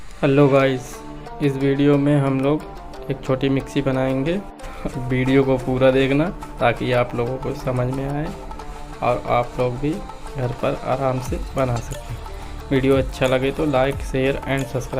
Hello guys, इस वीडियो में हम लोग एक छोटी मिक्सी बनाएंगे। वीडियो को पूरा देखना ताकि आप लोगों को समझ में आए और आप लोग भी घर पर आराम से बना सकें। वीडियो अच्छा लगे तो लाइक, शेयर एंड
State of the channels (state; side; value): identical; both; correlation 1.00